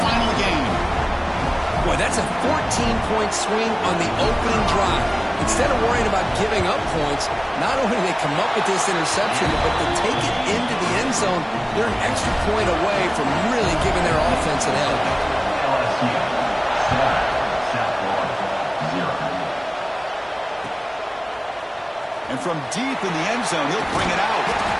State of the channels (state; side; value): identical; both; correlation 1.00